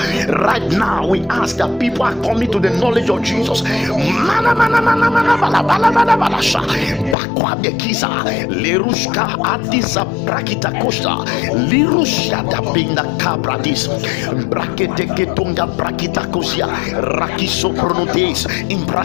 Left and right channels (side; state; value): right; drops out; at 7.2 s